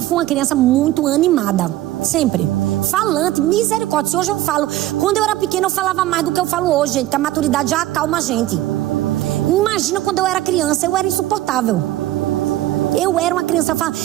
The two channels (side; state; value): left; quieter; 15.3 dB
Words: fui uma criança muito animada. Sempre. Falante, misericórdia. Se hoje eu falo, quando eu era pequena eu falava mais do que eu falo hoje, gente, que a maturidade já acalma a gente. Imagina quando eu era criança, eu era insuportável. Eu era uma criança,